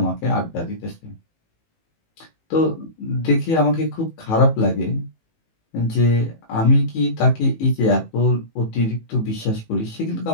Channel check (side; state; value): right; late; 18 ms